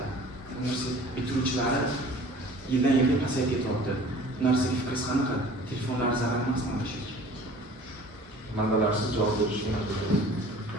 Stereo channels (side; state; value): both; normal; correlation 0.47